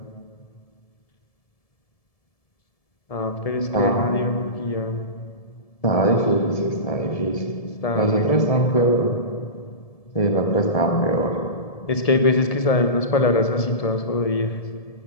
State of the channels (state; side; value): late; right; 1.7 ms